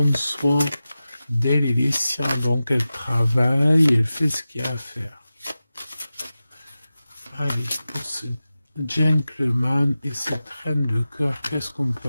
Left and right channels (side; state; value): both; inverted; correlation -0.95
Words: soin d'elle et des siens. Donc elle travaille, elle fait ce qu'il y a à faire. Allez, pour ce gentleman et cette reine de cœur, qu'est-ce qu'on